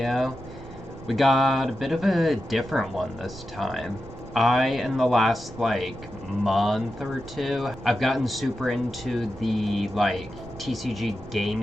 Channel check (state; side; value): noise; right; rumble, 16 dB below the sound